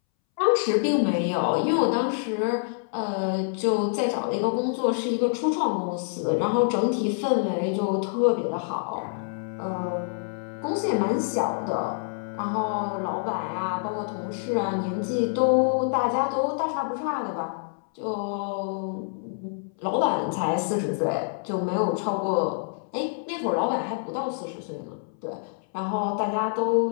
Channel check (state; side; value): silent; right; 61 dB below the other